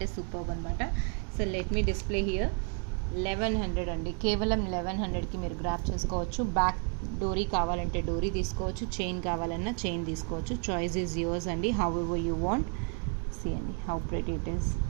సూపర్బ్ అనమాట. So let me display here. 1100 అండి, కేవలం 1100కి మీరు గ్రాప్ చేసుకోవచ్చు. బ్యాక్ డోరీ కావాలంటే డోరీ తీసుకోవచ్చు, చైన్ కావాలన్నా చైన్ తీసుకోవచ్చు. చాయిస్ ఈజ్ యువర్స్ అండి, however you want. See అండి హౌ ప్రెటీ ఇట్ ఈస్.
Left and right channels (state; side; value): quieter; left; 38.1 dB